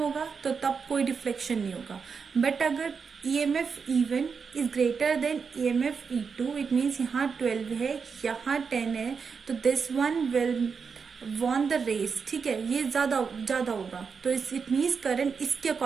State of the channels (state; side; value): quieter; left; 5.7 dB